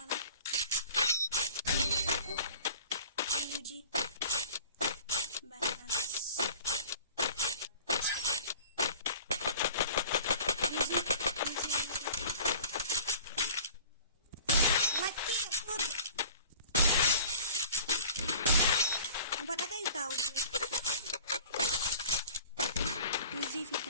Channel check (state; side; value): inverted; both; correlation -0.41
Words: Uji. Banas. Easy